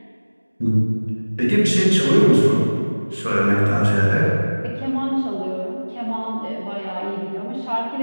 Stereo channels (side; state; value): both; inverted; correlation -1.00